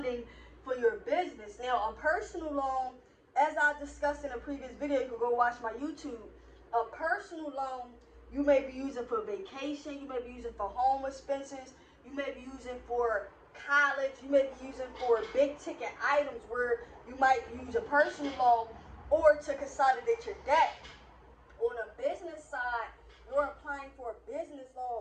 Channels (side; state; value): both; identical; correlation 1.00